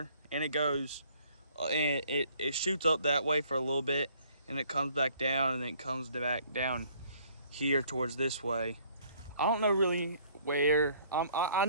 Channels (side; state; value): both; inverted; correlation -0.61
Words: and it goes and it shoots up that way for a little bit, and it comes back down, and then it comes back down here towards this way. I don't know really where. I